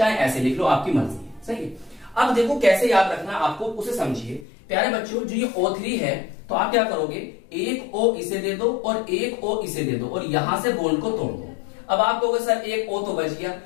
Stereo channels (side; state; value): right; drops out; at 4.5 s